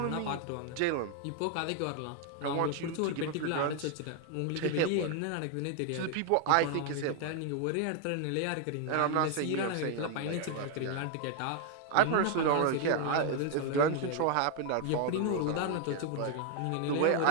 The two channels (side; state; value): both; different; correlation 0.00